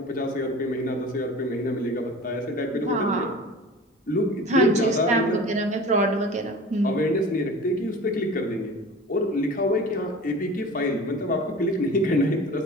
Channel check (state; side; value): normal; both; correlation 0.39